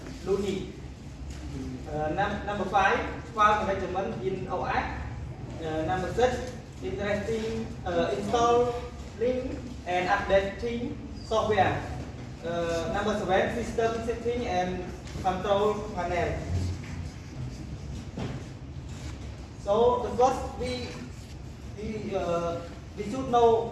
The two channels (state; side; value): identical; both; correlation 1.00